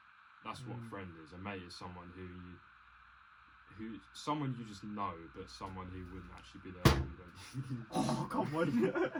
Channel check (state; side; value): identical; both; correlation 1.00